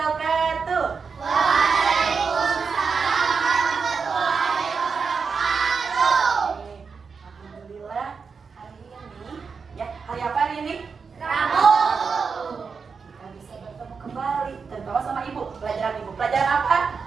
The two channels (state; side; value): quieter; left; 5.4 dB